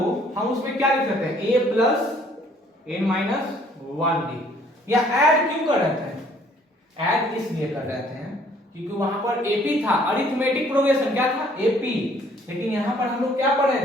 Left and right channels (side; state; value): both; normal; correlation 0.60